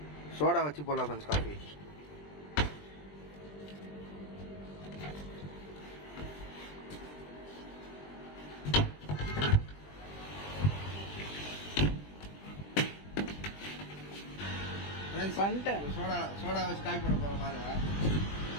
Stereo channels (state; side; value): late; right; 20 ms